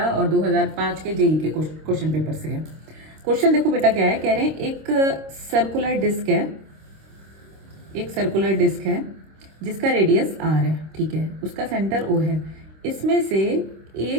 और 2005 के जेई के क्वेश्चन पेपर से है। क्वेश्चन देखो बेटा, क्या है, कह रहे हैं एक सर्कुलर डिस्क है जिसका रेडियस आर है, ठीक है, उसका सेंटर ओ है। इसमें से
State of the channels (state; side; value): late; left; 26 ms